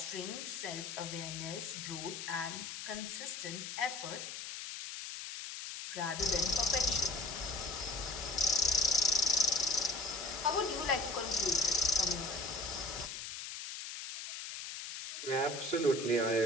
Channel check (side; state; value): left; noise; hiss, 7 dB below the sound